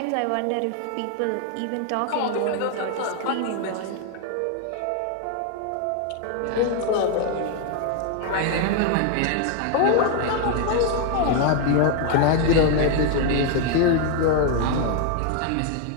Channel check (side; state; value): both; different; correlation 0.00